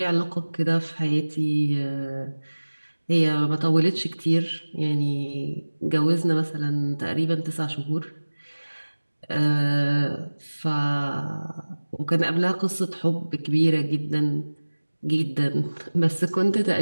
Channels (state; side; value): inverted; both; correlation -1.00